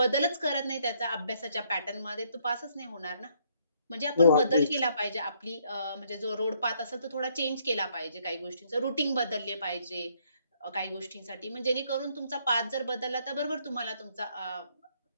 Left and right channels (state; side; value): inverted; both; correlation -0.69